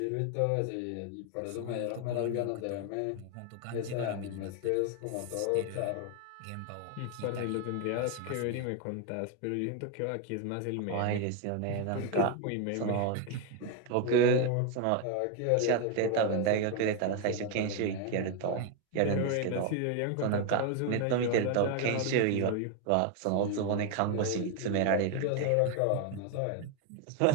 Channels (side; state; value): both; different; correlation 0.01